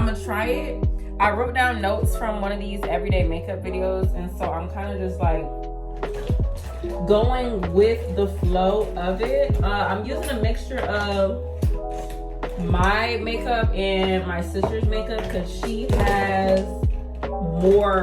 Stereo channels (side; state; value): both; identical; correlation 1.00